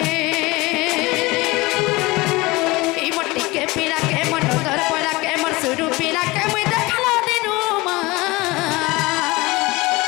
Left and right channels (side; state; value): right; quieter; 22.3 dB